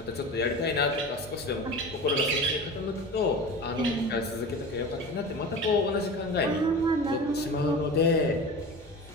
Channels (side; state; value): both; normal; correlation 0.33